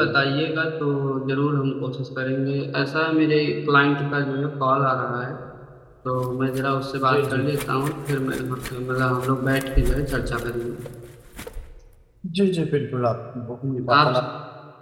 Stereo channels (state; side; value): identical; both; correlation 1.00